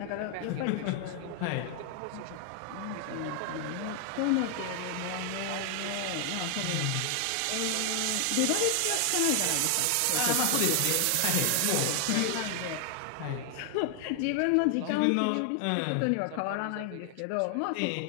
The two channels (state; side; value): different; both; correlation 0.00